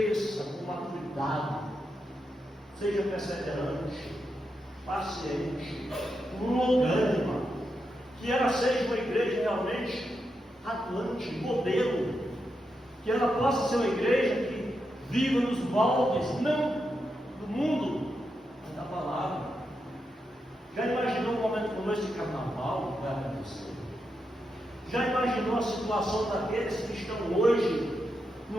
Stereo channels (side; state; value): both; normal; correlation 0.85